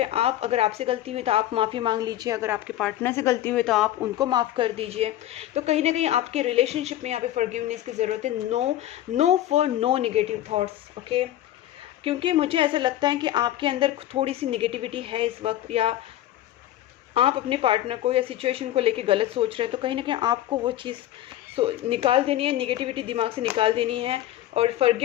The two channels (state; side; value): quieter; right; 13.3 dB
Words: आप अगर आपसे गलती हुई तो आप माफ़ी मांग लीजिए, अगर आपके पार्टनर से गलती हुई तो आप उनको माफ़ कर दीजिए। तो कहीं ना कहीं आपके रिलेशनशिप में यहाँ पे फॉरगिवनेस की ज़रूरत है। No for no negative thoughts, okay. क्योंकि मुझे ऐसा लगता है कि आपके अंदर थोड़ी सी नेगेटिविटी है इस वक्त, या आप अपने पार्टनर को या सिचुएशन को लेके गलत सोच रहे हैं, तो कहीं ना कहीं आपको वो चीज़ निकाल देनी है, नेगेटिविटी दिमाग से निकाल देनी है और